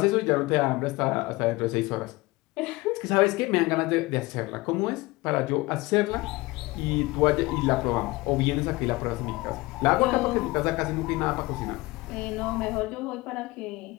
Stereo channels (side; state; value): right; quieter; 21.9 dB